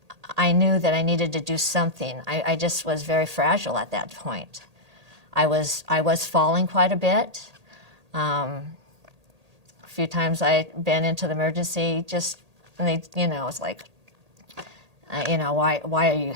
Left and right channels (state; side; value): late; left; 1.8 ms